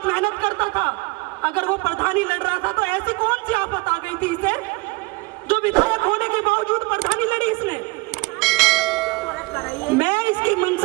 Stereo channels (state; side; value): quieter; left; 25.5 dB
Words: मेहनत करता था। अगर वो प्रधानी लड़ रहा था तो ऐसी कौन सी आफत आ गई थी इसे, जो विधायक होने के बावजूद प्रधानी लड़ी इसने? मैं इसकी